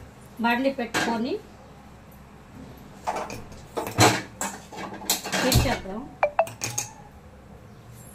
బండి పెట్టుకొని చేద్దాం.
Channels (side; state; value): both; identical; correlation 1.00